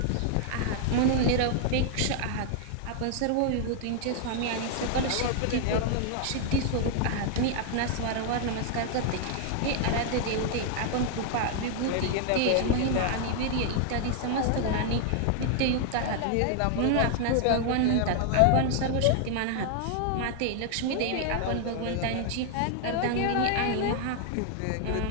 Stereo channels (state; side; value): different; both; correlation 0.00